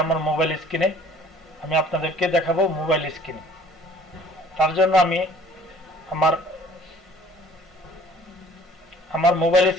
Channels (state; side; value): normal; both; correlation 0.54